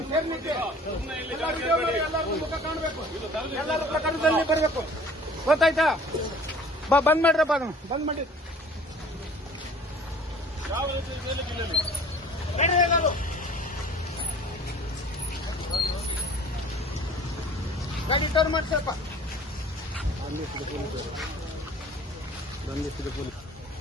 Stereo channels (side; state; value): both; normal; correlation 0.49